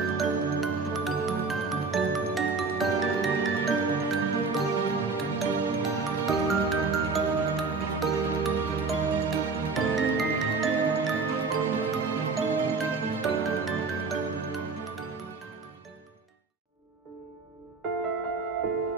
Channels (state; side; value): quieter; left; 4.3 dB